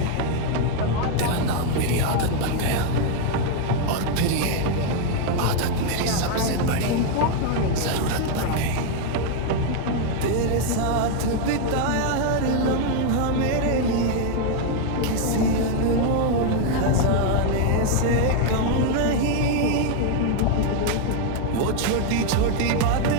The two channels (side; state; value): both; different; correlation 0.01